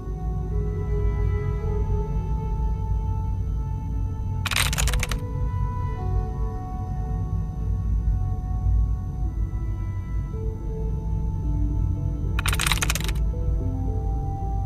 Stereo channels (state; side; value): identical; both; correlation 1.00